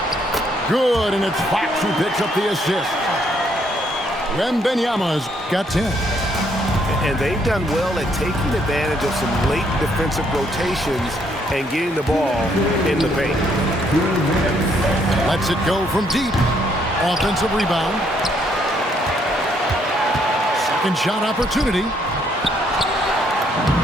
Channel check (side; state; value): both; normal; correlation 0.70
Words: Good, and it's Fox who picks up the assist. Wembanyama's got 10. And they've done well at taking advantage of some late defensive rotations and getting the ball in the paint. Lets it go from deep. Offensive rebound. Second shot opportunity.